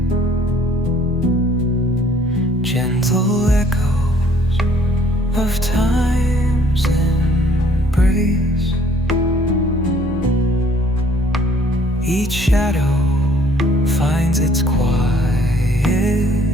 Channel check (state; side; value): normal; both; correlation 0.59